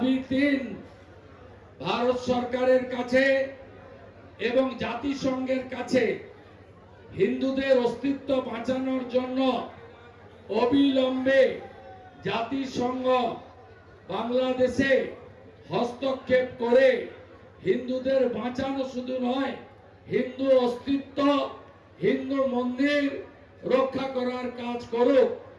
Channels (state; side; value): identical; both; correlation 1.00